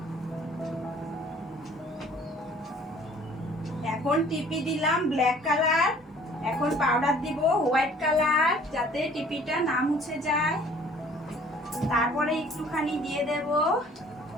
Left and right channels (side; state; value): both; normal; correlation 0.54